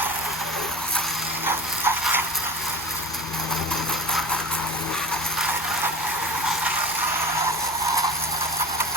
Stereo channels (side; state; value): both; normal; correlation 0.33